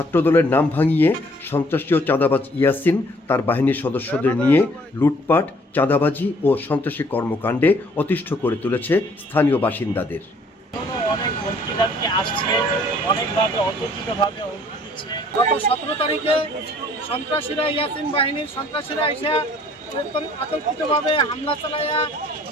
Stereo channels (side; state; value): both; normal; correlation 0.59